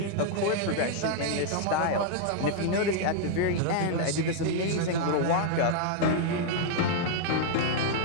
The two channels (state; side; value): different; both; correlation -0.01